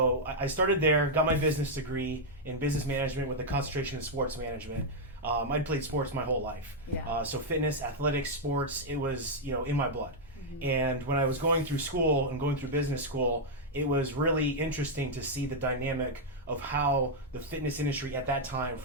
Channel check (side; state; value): both; normal; correlation -0.03